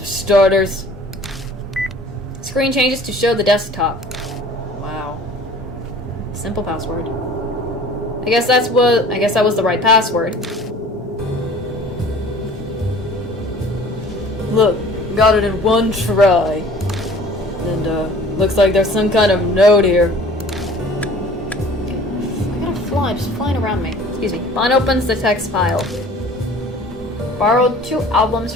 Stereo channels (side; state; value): both; normal; correlation 0.48